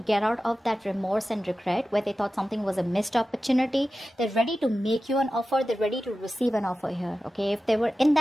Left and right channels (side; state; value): both; normal; correlation 0.94